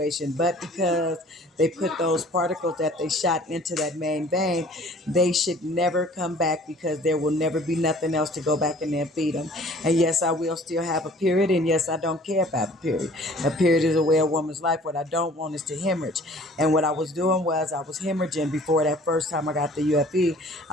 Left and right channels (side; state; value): both; normal; correlation 0.51